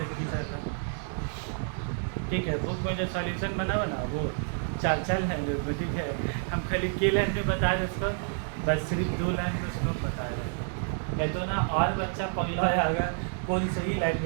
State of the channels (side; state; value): left; silent; 58 dB below the other